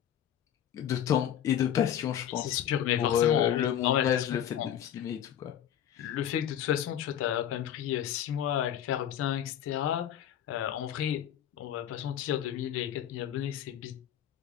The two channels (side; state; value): right; quieter; 10.3 dB